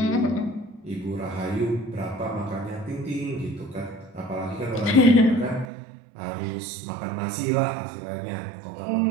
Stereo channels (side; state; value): left; drops out; at 5.7 s